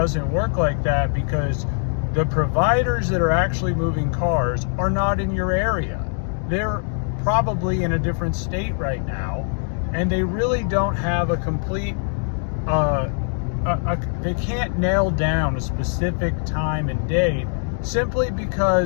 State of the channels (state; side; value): silent; right; 56 dB below the other